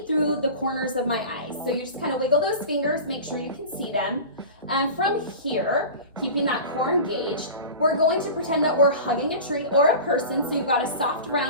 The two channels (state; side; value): inverted; both; correlation -0.34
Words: through the corners of my eyes. So you just kind of wiggle those fingers, make sure you can see them. And from here, keeping that core engaged, we're going to pretend that we're hugging a tree or a person. So you've got a soft